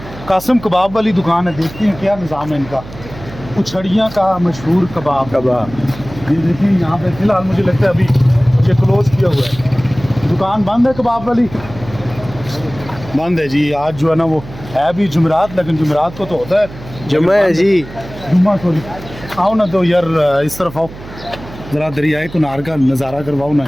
कासिम कबाब वाली दुकान है, देखते हैं क्या निज़ाम है इनका। उछड़ियाँ का मशहूर कबाब ये देखिए यहाँ पे फ़िलहाल मुझे लगता है अभी ये क्लोज़ किया हुआ है, दुकान बंद है कबाब वाली, बंद है जी। आज जो है ना वो है भी जुमेरात, लेकिन जुमेरात को तो होता है जुम्मा है जी, जुम्मा सॉरी। आओ ना तो यार इस तरफ आओ, ज़रा दरियाए कुनार का नज़ारा करवाओ ना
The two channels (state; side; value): noise; right; hum, 15 dB below the sound